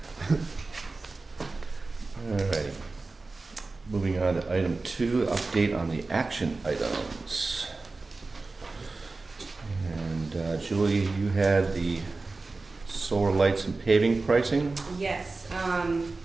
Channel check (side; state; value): left; quieter; 3.6 dB